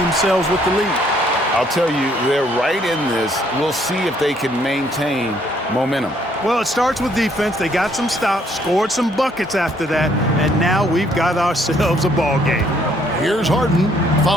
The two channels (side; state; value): both; normal; correlation 0.66